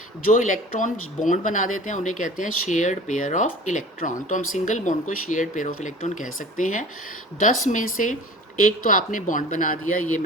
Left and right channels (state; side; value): normal; both; correlation 0.41